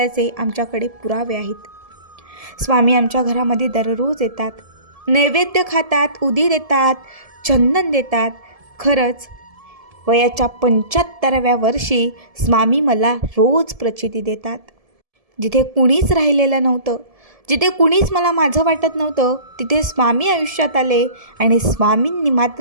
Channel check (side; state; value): left; late; 1.7 ms